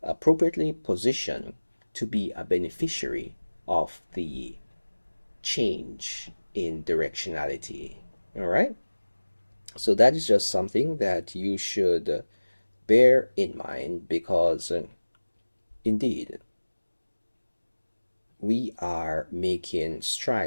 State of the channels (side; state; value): both; inverted; correlation -1.00